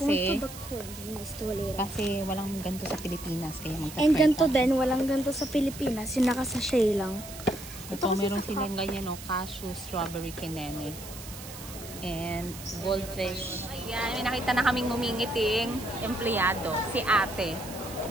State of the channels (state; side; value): noise; right; hiss, 13 dB below the sound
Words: walang ganito sa Pilipinas. Kaya magta-try And ganito din, walang ganito sa Pilipinas. Yung nakasashay lang. Ito meron silang ganyan, no? Cashew, strawberry, kineme. And goldfish. Ayan, may nakita na kaming ngumingiting empleyado. Si ate.